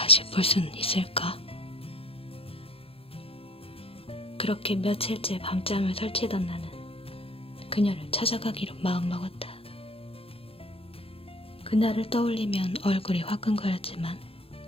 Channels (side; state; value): right; late; 0.27 ms